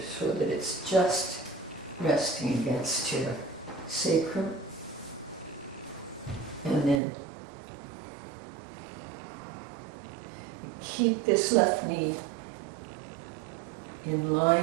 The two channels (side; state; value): left; drops out; at 7.0 s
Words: so that it's just resting against your sacrum. And then you keep this left knee in